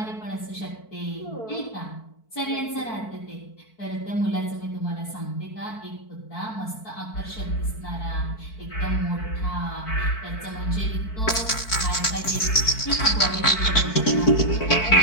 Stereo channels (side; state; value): right; late; 4.5 ms